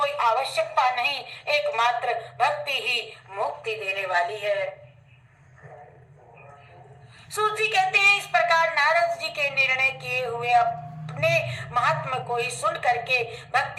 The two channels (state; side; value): identical; both; correlation 1.00